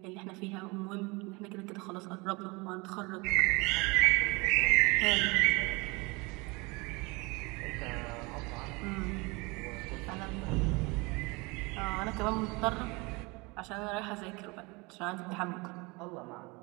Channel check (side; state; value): left; quieter; 26.2 dB